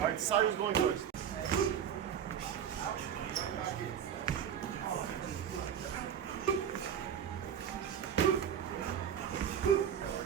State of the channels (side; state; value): left; quieter; 8.8 dB